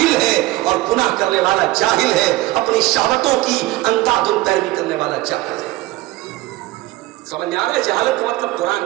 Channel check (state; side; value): quieter; left; 18.4 dB